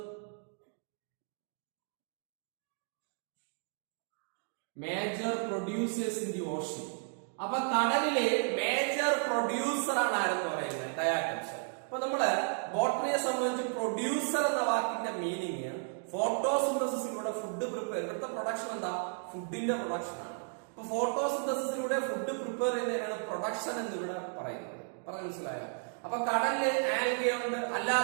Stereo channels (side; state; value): left; silent; 55 dB below the other